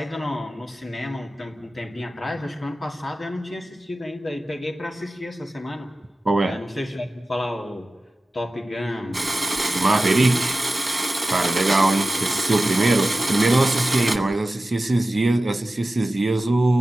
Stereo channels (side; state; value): both; normal; correlation 0.95